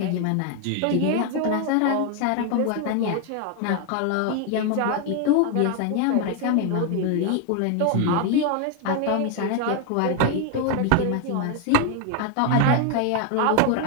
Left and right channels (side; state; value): both; different; correlation 0.01